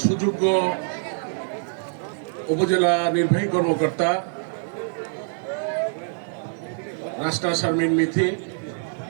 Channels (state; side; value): silent; left; digital silence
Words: সুযোগ্য উপজেলা নির্বাহী কর্মকর্তা রাস্তা শারমিন মিথি।